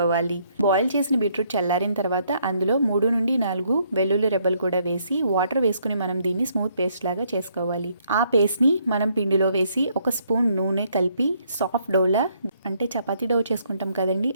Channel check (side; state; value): both; inverted; correlation -0.69